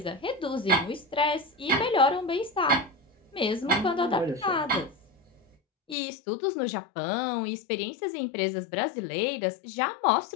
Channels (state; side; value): drops out; right; at 6.0 s